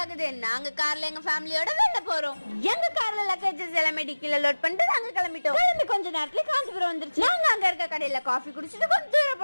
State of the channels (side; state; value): both; inverted; correlation -1.00